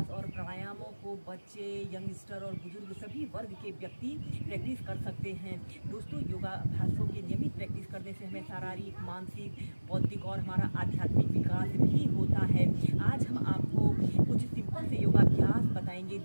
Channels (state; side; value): inverted; both; correlation -1.00